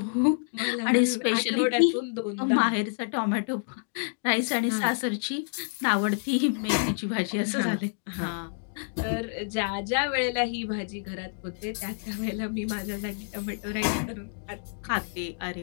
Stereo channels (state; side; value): silent; right; digital silence